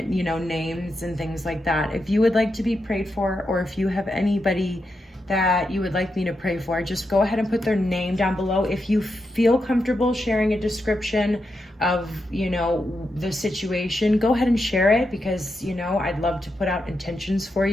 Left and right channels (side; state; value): both; normal; correlation 0.85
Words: you know, names and things like that. If you would like to be prayed for, or if you have anybody that you would like me to pray for, just go ahead and put their name down below. If you feel comfortable sharing a description of, you know, the situation, go ahead and share it, because, you know, I'd love to put out intentions for